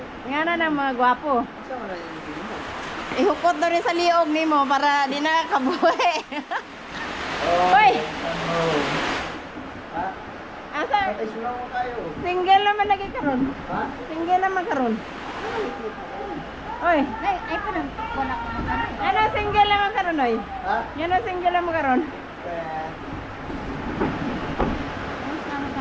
Nga na ng mga gwapo. Asa man na yung film mo? Ihukot daw rin sa liog ni mo para di na kabuhi. Hoy! Ha? Asa? Patay sulaw mo tayo. Single naman lagi karon. Ha? Single naman karon. Oy, Ay, pa nang wala ko magkano. ano single naman karon oy? Ha? Yan ang single naman karon. Tapos naman ka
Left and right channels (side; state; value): both; identical; correlation 1.00